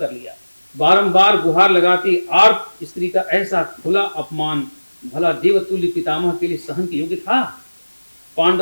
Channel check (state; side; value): inverted; both; correlation -1.00